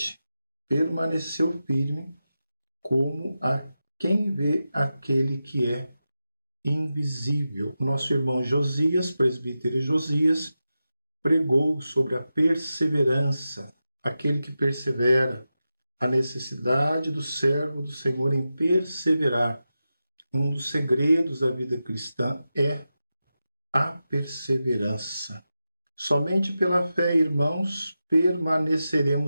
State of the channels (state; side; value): inverted; both; correlation -0.92